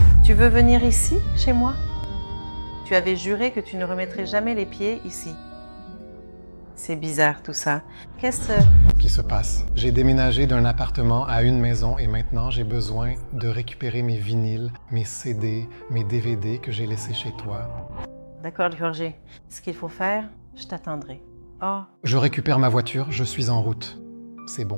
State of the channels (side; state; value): both; inverted; correlation -1.00